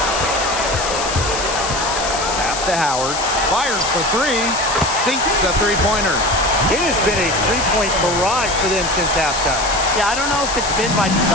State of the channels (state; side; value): noise; left; hiss, 5 dB below the sound